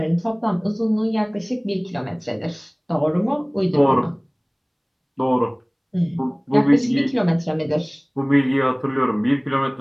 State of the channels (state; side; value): identical; both; correlation 1.00